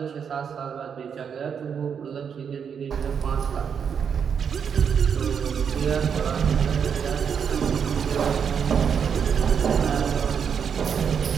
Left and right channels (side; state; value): left; quieter; 7.2 dB